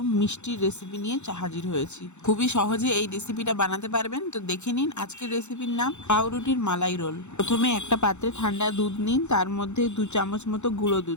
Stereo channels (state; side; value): late; right; 0.83 ms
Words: মিষ্টির রেসিপি নিয়ে হাজির হয়েছি। খুবই সহজে এই রেসিপিটা বানাতে পারবেন। তো দেখে নিন আজকের রেসিপির নাম পাউরুটির মালাই রোল। প্রথমে একটা পাত্রে ঠান্ডা দুধ নিন, তার মধ্যে 2 চামচ মতো গুঁড়ো